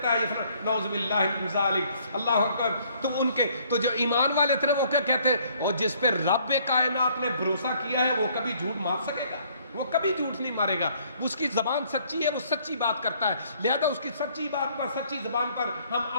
ہے، یہ نعوذ باللہ من ذالک، اللہ اکبر، تو ان کے تو جو ایمان والے تھے وہ کیا کہتے، اور جس پہ رب کائنات نے بھروسہ کیا ہے وہ کبھی جھوٹ مار سکے گا؟ وہ کبھی جھوٹ نہیں مارے گا، اس کی زبان سچی ہے، وہ سچی بات کرتا ہے، لہذا اس کی سچی بات پر، سچی زبان پر ہم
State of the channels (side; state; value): both; inverted; correlation -0.62